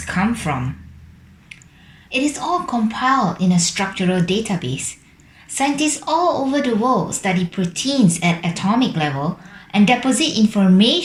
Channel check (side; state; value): both; identical; correlation 1.00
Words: come from? It is all compiled in a structural database. Scientists all over the world study proteins at atomic level and deposit